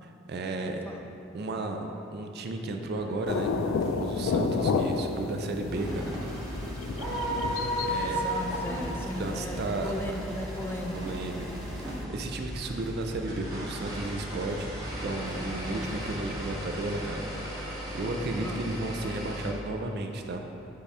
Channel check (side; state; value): both; normal; correlation 0.42